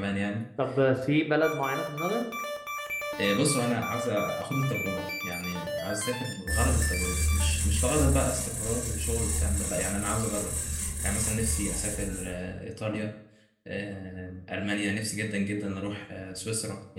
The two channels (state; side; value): identical; both; correlation 1.00